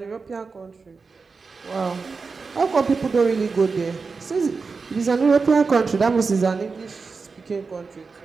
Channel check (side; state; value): left; quieter; 4.6 dB